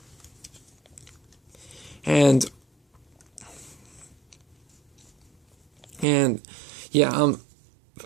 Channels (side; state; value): left; drops out; at 6.1 s